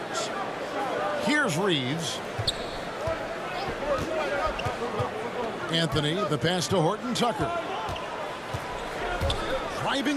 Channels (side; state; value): both; identical; correlation 1.00